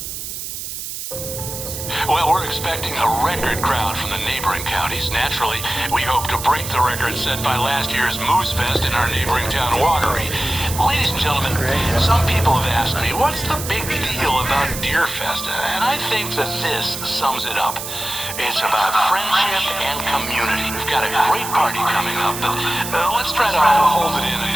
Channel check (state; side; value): noise; right; hiss, 7 dB below the sound